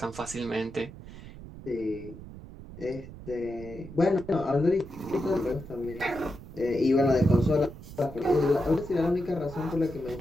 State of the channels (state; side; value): noise; right; rumble, 15 dB below the sound